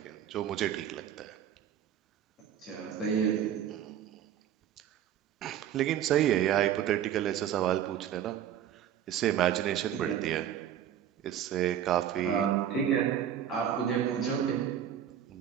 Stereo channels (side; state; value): left; quieter; 10.0 dB